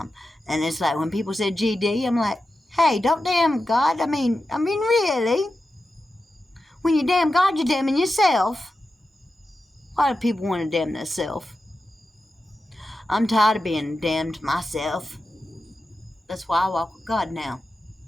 And it's like when people said GD, I'm like, hey, don't damn God. I mean, really? When you damn God, you're damning yourself. Why do people want to damn themselves? I'm tired of being damned myself. That's why I walk with God now.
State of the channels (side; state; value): both; normal; correlation 0.91